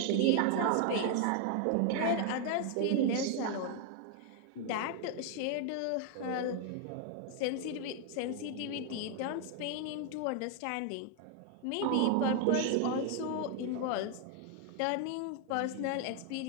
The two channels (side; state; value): both; different; correlation 0.00